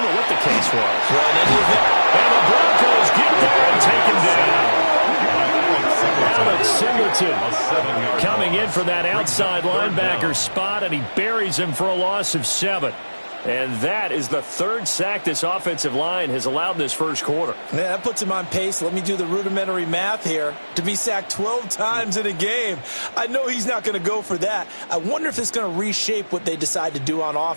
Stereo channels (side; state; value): both; inverted; correlation -1.00